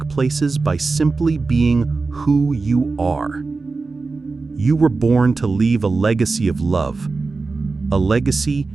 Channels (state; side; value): quieter; left; 4.0 dB